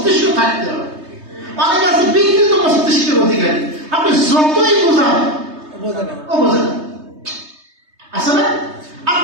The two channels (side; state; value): left; late; 3.2 ms